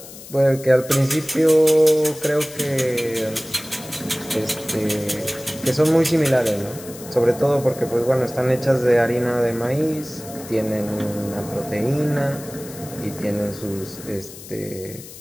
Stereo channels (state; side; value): noise; left; hiss, 16 dB below the sound